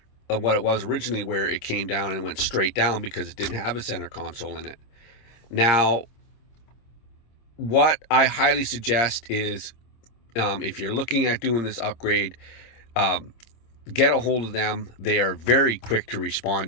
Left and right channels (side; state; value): right; late; 26 ms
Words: what it was originally, where it came down and went straight down because it didn't have a center console in it. Now, what I highly suggest is, if you're looking at doing this upgrade, get a hold of them. They are very quick to